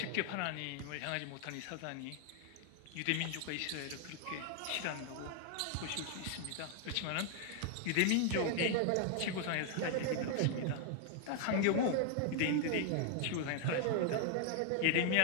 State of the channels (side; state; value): both; different; correlation 0.00